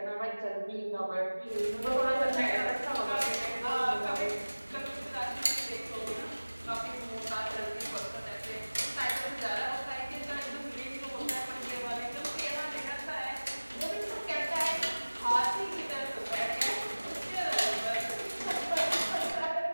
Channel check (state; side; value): inverted; both; correlation -1.00